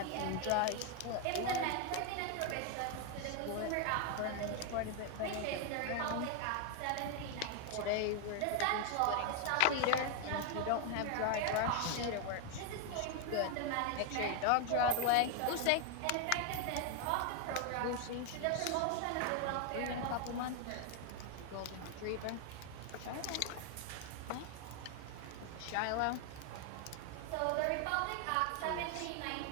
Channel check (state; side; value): different; both; correlation 0.00